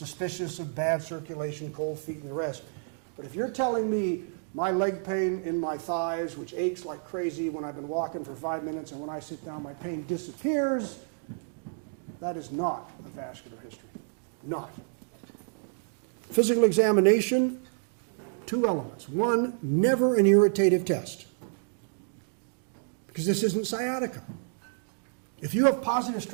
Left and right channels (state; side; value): silent; left; digital silence